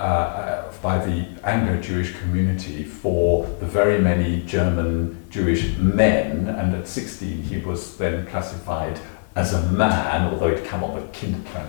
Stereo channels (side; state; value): right; silent; 64 dB below the other